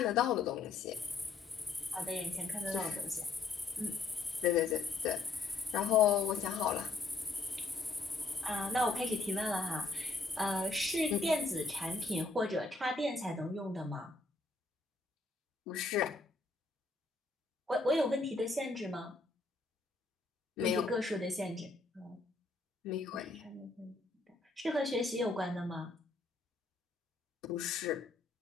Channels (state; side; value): quieter; right; 3.8 dB